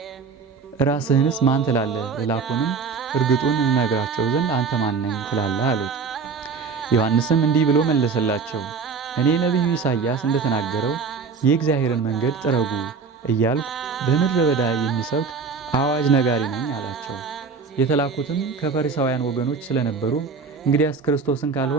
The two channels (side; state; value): left; quieter; 5.1 dB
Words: ራስህንስ ማን ትላለህ? ልላኩንም እርግጡን እንነግራቸው ዘንድ አንተ ማን ነኝ ትላለህ አሉት። ዮሐንስም እንዲህ ብሎ መለሰላቸው፣ እኔ ነቢዩ ኢሳይያስ እንደተናገረው የእግዚአብሔርን መንገድ ጥረጉ እያልኩ በምድረ በዳ የሚሰብክ አዋጅ ነጋሪ ነኝ አላቸው። የተላኩትም ከፈሪሳውያን ወገኖች ስለነበሩ እንግዲያስ ክርስቶስን